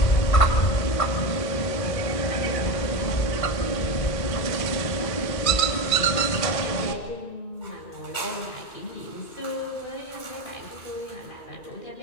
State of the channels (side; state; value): right; late; 1.8 ms